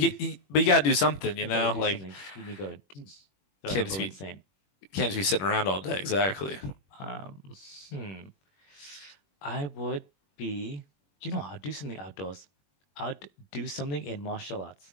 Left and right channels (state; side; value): late; right; 21 ms